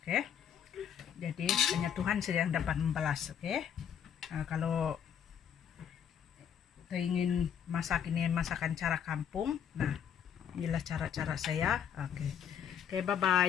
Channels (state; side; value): quieter; right; 8.6 dB